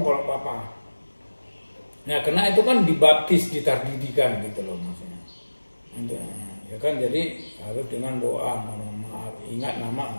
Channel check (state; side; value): inverted; both; correlation -1.00